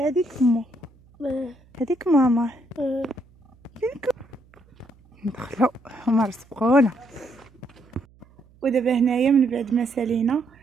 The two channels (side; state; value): right; noise; hum, 29 dB below the sound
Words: هذيك مو هذيك ماما. ندخلو هما رزقونا. ودابا هنايا من بعد ما سالينا